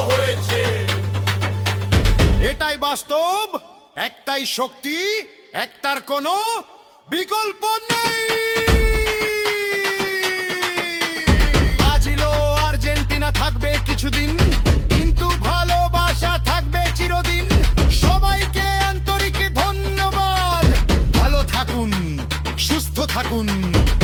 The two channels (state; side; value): identical; both; correlation 1.00